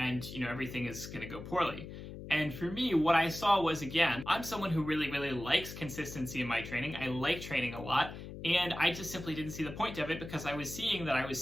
everything is going to go poorly. And for me, what I saw was, again, I'm someone who really, really likes consistency in my training. I like training a lot, and I just simply didn't see the point of it because I was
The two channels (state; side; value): noise; left; hum, 11 dB below the sound